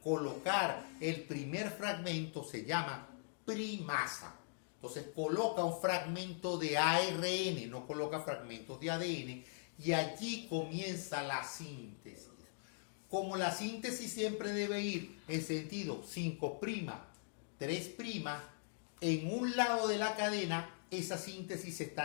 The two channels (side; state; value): right; silent; digital silence